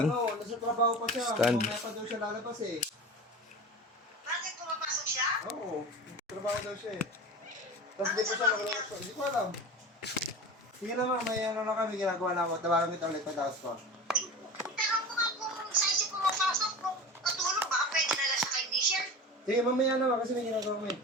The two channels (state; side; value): normal; both; correlation 0.32